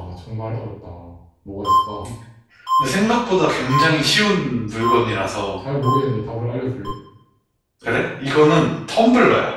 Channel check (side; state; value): both; identical; correlation 1.00